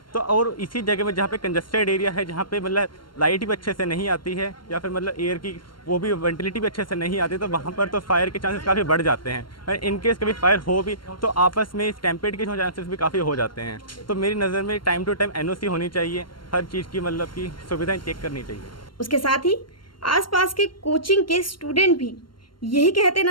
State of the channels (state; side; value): late; right; 0.72 ms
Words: तो और इसी जगह में जहाँ पे कंजस्टेड एरिया है, जहाँ पे मतलब लाइट भी अच्छे से नहीं आती है या फिर मतलब एयर की वो भी वेंटिलिटी भी अच्छे से नहीं आती, तो वहाँ पर तो फायर के चांसेस काफ़ी बढ़ जाते हैं। और इनकेस कभी फायर हो भी तो आपस में स्टैम्पेड के चांसेस भी काफ़ी हो जाते हैं। तो मेरी नज़र में टाइम टू टाइम NOC होनी चाहिए, हर चीज़ की मतलब की सुविधाएँ चेक करनी चाहिए। उसके साथ ही आसपास के कोचिंग के स्टूडेंट भी यही कहते